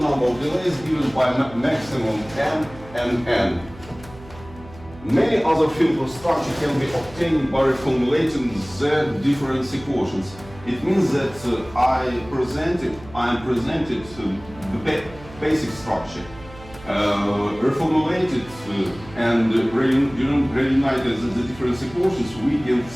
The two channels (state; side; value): noise; right; hum, 19 dB below the sound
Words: number of delays given by maximum n and n. Many other filter structures can be obtained by reformulating the difference equations. It means that I am presented the basic structure, reformulated and reunited the difference equations.